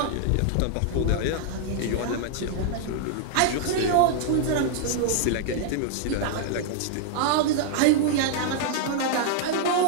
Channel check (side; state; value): both; different; correlation -0.01